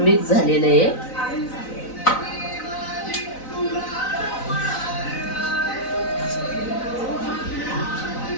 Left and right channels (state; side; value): late; right; 3.9 ms